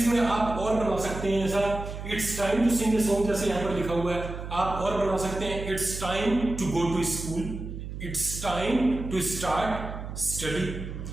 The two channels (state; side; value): noise; right; hum, 8 dB below the sound